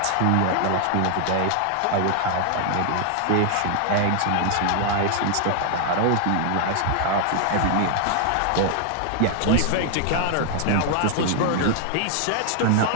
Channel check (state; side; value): different; both; correlation 0.00